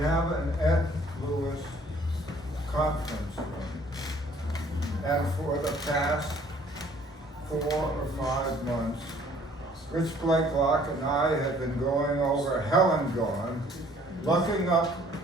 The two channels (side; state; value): both; normal; correlation 0.58